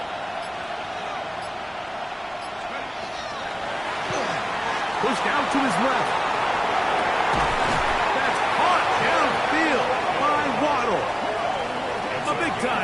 Pushed out to his left. That's caught downfield by Waddle. A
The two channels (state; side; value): identical; both; correlation 1.00